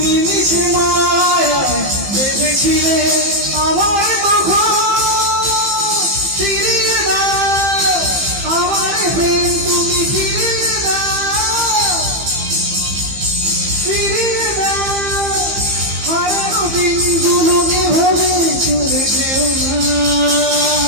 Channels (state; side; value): late; left; 15 ms